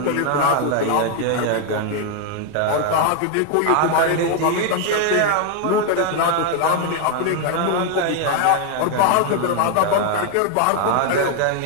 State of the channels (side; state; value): both; different; correlation 0.00